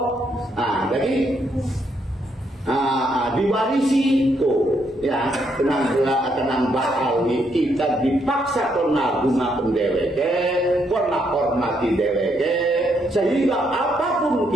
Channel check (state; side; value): normal; both; correlation 0.75